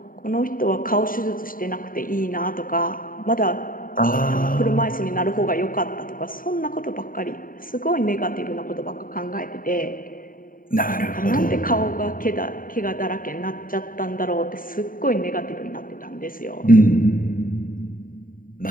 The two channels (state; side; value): late; right; 0.41 ms